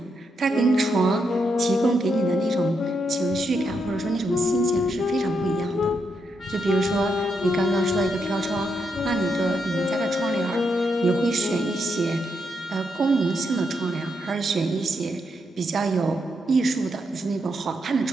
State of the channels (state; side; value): normal; both; correlation 0.81